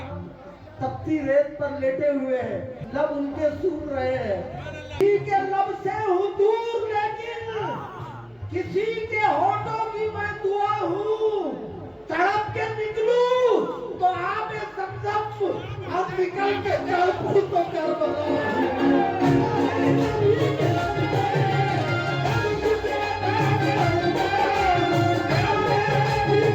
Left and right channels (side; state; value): both; identical; correlation 1.00